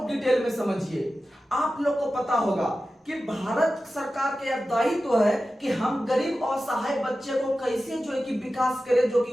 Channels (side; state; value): both; normal; correlation 0.94